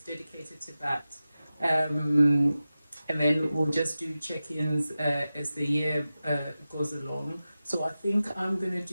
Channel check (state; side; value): inverted; both; correlation -0.94